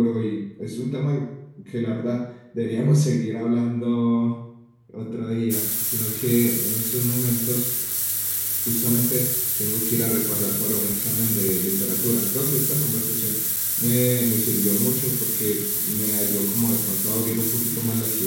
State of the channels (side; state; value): both; identical; correlation 1.00